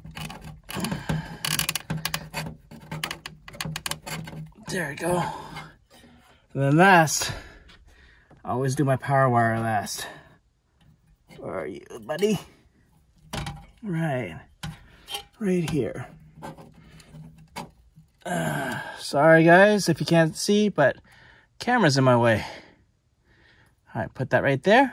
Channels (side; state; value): both; identical; correlation 1.00